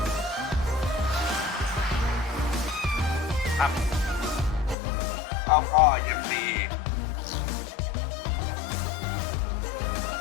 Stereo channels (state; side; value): drops out; right; at 4.8 s